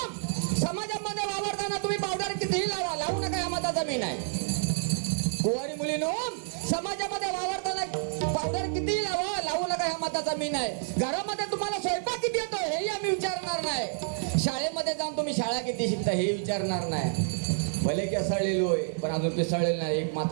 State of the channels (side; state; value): left; silent; digital silence